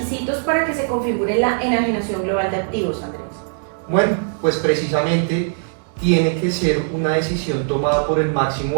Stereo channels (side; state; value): left; silent; digital silence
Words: para que se configure la enajenación global de activos, Andrés? Bueno, pues precisamente tiene que ser una decisión tomada por el máximo